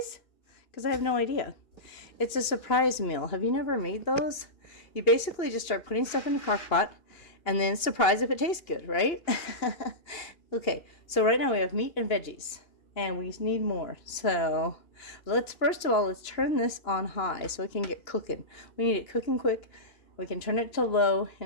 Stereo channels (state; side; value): late; right; 2.8 ms